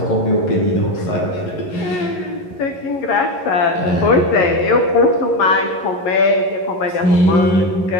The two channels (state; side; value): late; right; 11 ms